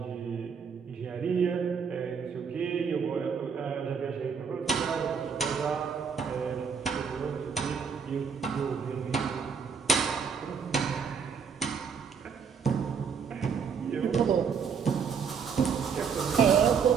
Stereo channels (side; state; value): left; quieter; 6.3 dB